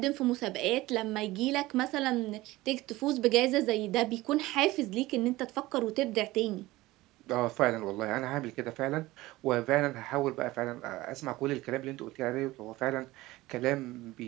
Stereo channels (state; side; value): quieter; left; 18.6 dB